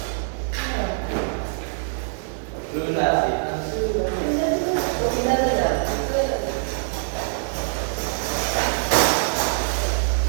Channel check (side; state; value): left; silent; 63 dB below the other